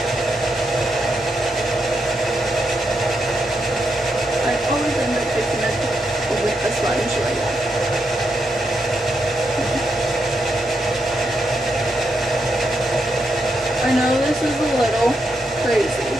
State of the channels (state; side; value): normal; both; correlation 0.82